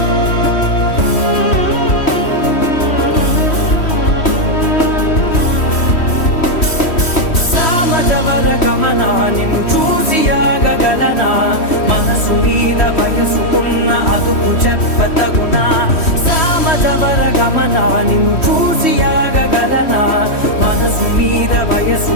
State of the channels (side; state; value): right; late; 3.1 ms